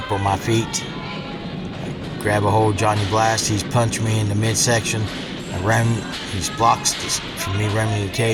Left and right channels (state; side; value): identical; both; correlation 1.00